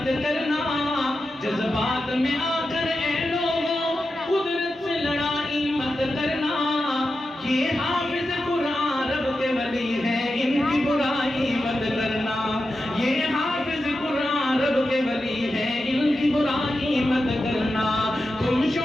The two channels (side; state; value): both; normal; correlation 0.90